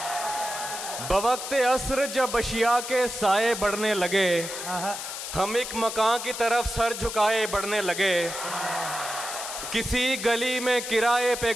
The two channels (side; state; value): left; noise; hiss, 7 dB below the sound